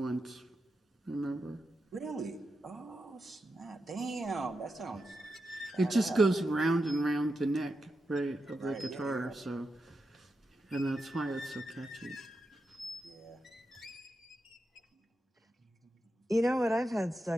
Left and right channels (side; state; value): both; normal; correlation 0.88